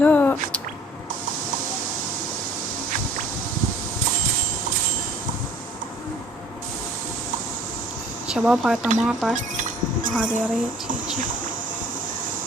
شباب هاي طماطة. هذا يريد هيجي.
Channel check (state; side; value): normal; both; correlation 0.53